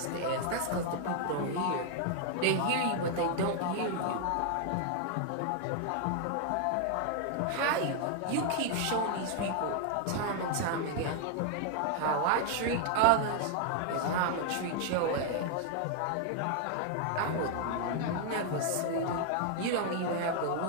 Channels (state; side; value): different; both; correlation 0.00